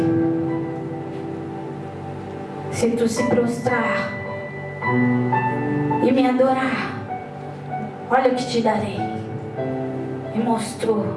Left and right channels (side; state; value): both; identical; correlation 1.00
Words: se tu se prostrar e me adorar, olha o que te darei. E mostrou.